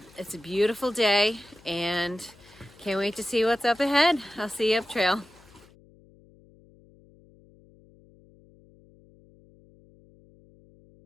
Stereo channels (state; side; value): noise; left; hum, 27 dB below the sound